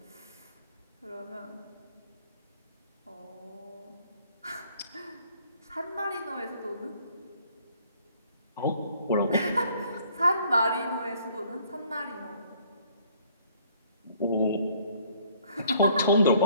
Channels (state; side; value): inverted; both; correlation -0.61